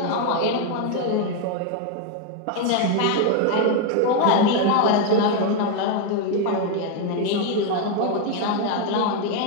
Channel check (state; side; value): different; both; correlation 0.01